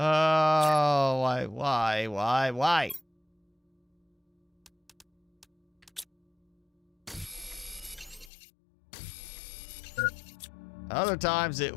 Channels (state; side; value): drops out; right; at 8.3 s